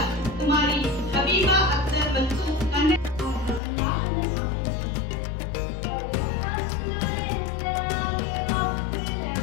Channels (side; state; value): right; drops out; at 3.6 s